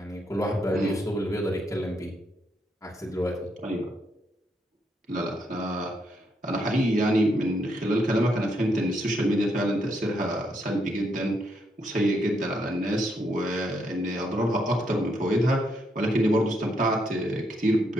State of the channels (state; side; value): normal; both; correlation 0.77